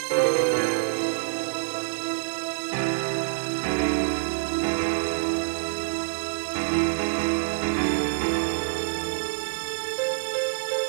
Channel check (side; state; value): left; silent; 61 dB below the other